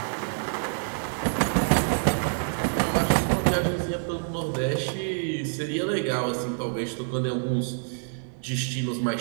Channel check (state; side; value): silent; left; digital silence